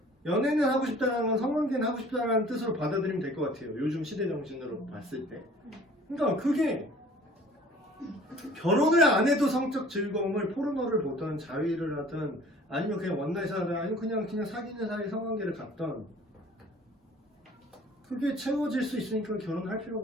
연애는 하고 싶다는 건 성관계는 하고 싶다는 뜻으로 받아들이면 될 것 같아요. 요즘 시대 정신으로 봤을 때. 그러니까 그게 결혼을 안 해도 성적 즐거움을 포르노를 보던 자위를 하든 아니면 그냥 원나잇을 하든 아니면 그냥 사귀는 사이 성관계를 갖던 그게 채워질 수 있으니까 결혼할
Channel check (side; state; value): both; normal; correlation 0.50